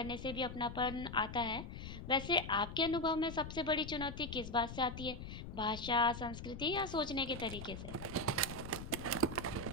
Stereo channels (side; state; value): left; noise; rumble, 9 dB below the sound